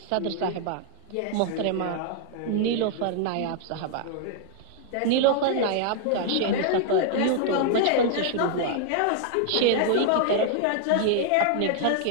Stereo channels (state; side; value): different; both; correlation 0.00